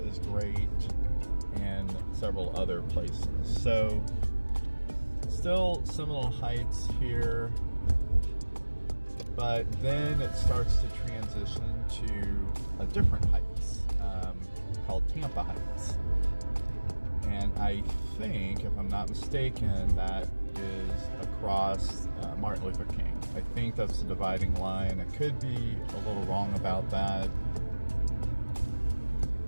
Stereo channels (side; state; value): both; inverted; correlation -1.00